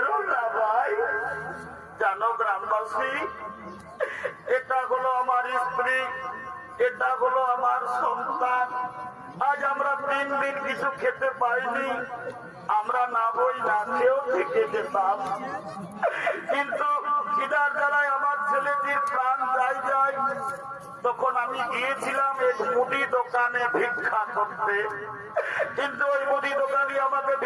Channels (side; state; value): both; identical; correlation 1.00